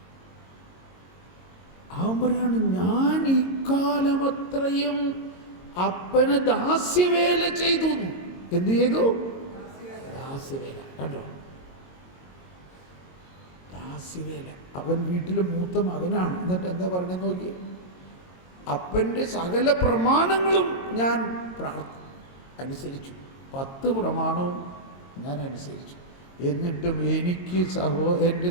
അവൻ പറയാണ്, ഞാൻ ഇക്കാലമത്രയും അപ്പന് ദാസ്യവേല ചെയ്തു. എന്ത് ചെയ്തു? ദാസ്യവേല. കണ്ടോ? ദാസ്യവേല. അവൻ വീട്ടിലെ മൂത്ത മകനാണ്. എന്നിട്ട് എന്താ പറഞ്ഞെന്ന് നോക്കിയേ, അപ്പൻ്റെ സകല പ്രമാണങ്ങളും ഞാൻ അനുസരിച്ചു. 10 പ്രമാണവും ഞാൻ അനുസരിച്ചു. എന്നിട്ടും എനിക്ക് എൻ്റെ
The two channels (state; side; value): late; right; 22 ms